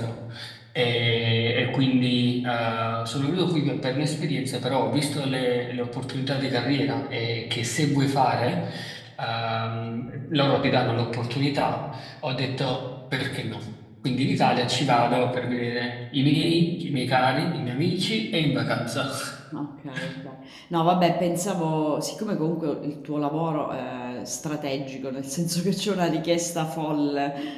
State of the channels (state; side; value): identical; both; correlation 1.00